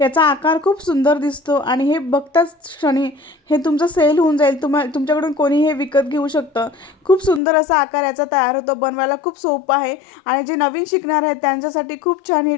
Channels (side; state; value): right; drops out; at 7.4 s